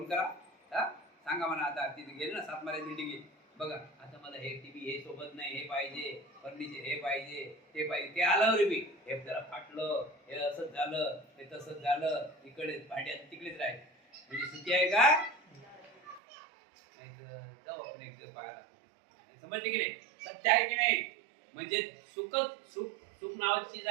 करा. सांगा म्हणा, आता तिथे गेले ना 7 माळ्याची बिल्डिंग, बघा आता मला हे टीव्ही हे सोबत नाही, हे पाहिजे, फर्निचर हे पाहिजे, ते पाहिजे. ते आलं रे, हे जरा फाटलं, हे असंच झालं, हे तसंच झालं, इकडे भांड्यात तिकडेच राहील. म्हणजे सुखी आहे का? नाही तर जाऊ आपण एक दिवस पाहायला. समजते की नाही? सत्य आहे की नाही? म्हणजे सुख सुख सुख नावाची चीज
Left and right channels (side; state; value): left; drops out; at 16.2 s